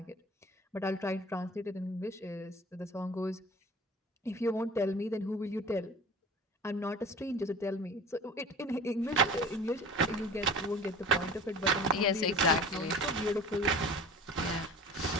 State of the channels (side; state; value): both; normal; correlation 0.41